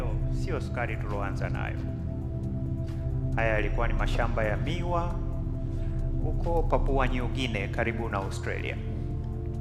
sio sukari tulioanza nayo. Haya yalikuwa ni mashamba ya miwa huko Papua New Guinea karibu na Australia.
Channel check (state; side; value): identical; both; correlation 1.00